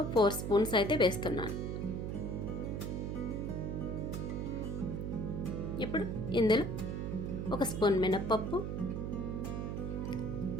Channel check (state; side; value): noise; right; hum, 3 dB below the sound